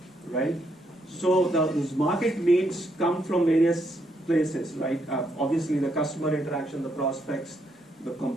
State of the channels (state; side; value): normal; both; correlation 0.76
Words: right? So those market needs come from various places, right? Obviously the customer interaction, the prospects, the